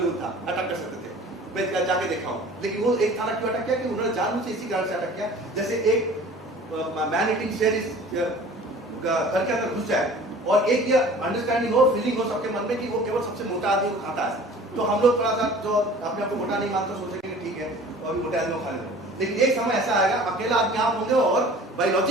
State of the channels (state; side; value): normal; both; correlation 0.45